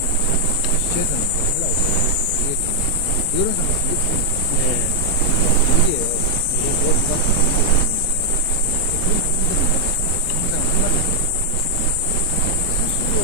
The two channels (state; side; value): different; both; correlation 0.00